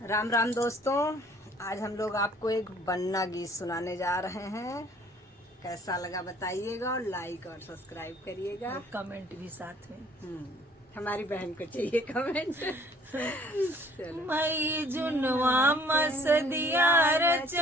राम राम दोस्तों, आज हम लोग आपको एक बन्ना गीत सुनाने जा रहे हैं। कैसा लगा बताइएगा और लाइक और सब्सक्राइब करिएगा। और कमेंट भी साथ में। हमारी बहन को चाहिए कमेंट। चलो। मई जुनवा मस दिया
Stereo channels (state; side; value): normal; both; correlation 0.56